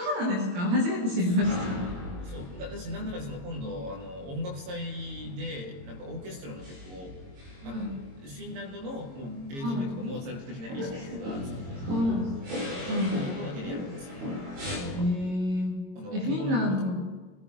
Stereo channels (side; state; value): left; late; 22 ms